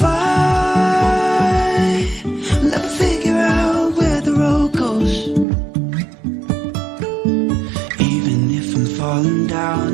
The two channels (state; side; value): drops out; left; at 5.5 s